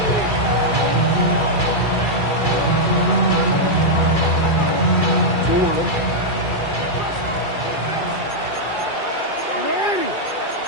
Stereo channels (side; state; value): right; late; 2.3 ms